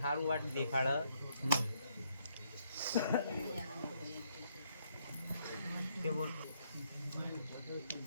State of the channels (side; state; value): both; inverted; correlation -0.73